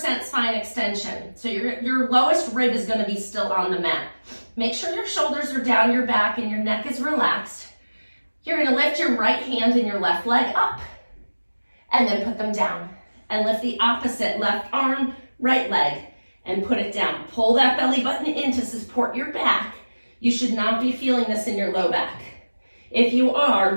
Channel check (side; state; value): both; inverted; correlation -1.00